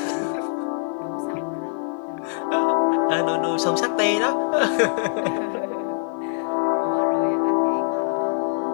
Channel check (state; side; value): silent; right; digital silence